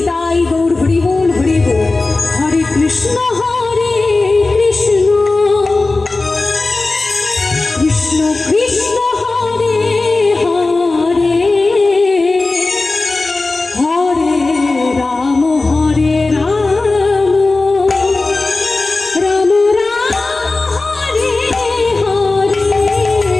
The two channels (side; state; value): right; quieter; 3.4 dB